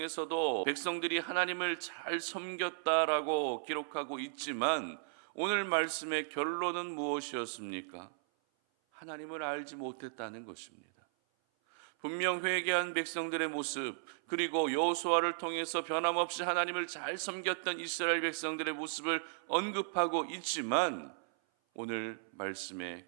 백성들이 하나님을 잘 섬겼다라고 기록하고 있지만 오늘 말씀의 결론은 무엇이었습니까? 하나님을 알지 못했다는 것입니다. 분명 회개한 백성들의 모습, 그리고 여호수아를 통해서 변함없이 하나님을 잘 섬겼던 이스라엘 백성들의 모습을 언급하고 있지만 오늘 말씀의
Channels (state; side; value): silent; left; 54 dB below the other